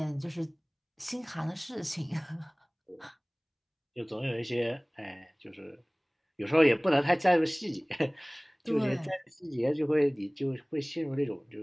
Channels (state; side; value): identical; both; correlation 1.00